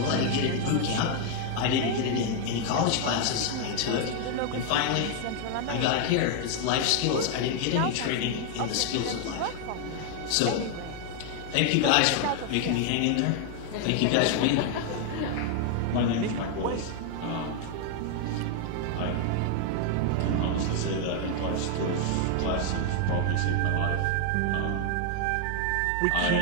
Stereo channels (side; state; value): both; different; correlation 0.00